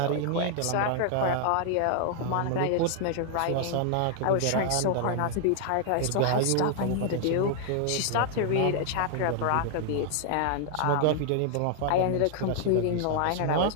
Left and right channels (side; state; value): both; different; correlation -0.01